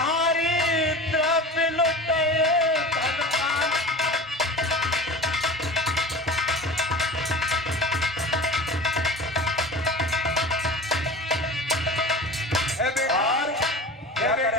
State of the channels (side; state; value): both; normal; correlation 0.34